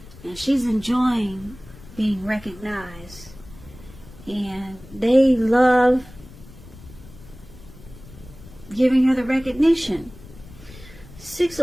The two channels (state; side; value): noise; left; rumble, 19 dB below the sound